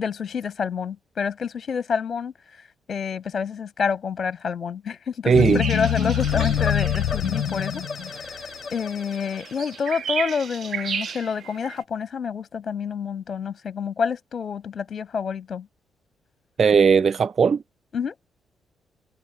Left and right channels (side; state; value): both; normal; correlation 0.71